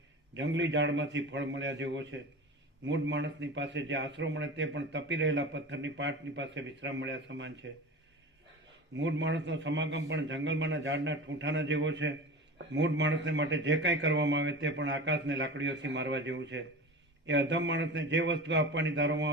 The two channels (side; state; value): both; normal; correlation 0.32